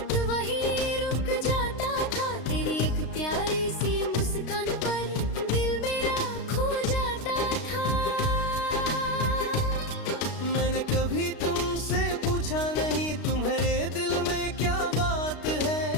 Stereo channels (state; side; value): late; right; 32 ms